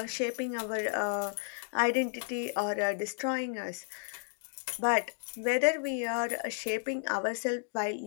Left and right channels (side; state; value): right; silent; digital silence